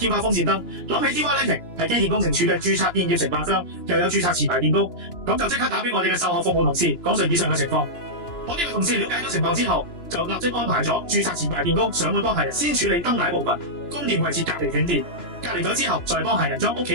花風扇燈，諗起 TY Lighting 係機電工程署嘅註冊電業承辦商，又有註冊持牌電工，咁就即刻打俾我哋嘅售後服務同事講述以上嘅情況。我呢位同事了解咗情況之後，就立即安排咗註冊持牌電工上門幫客人先處理燈帶部分，供電位置隔離斷電，隔離咗之後再幫客人將屋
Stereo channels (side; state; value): right; late; 2.9 ms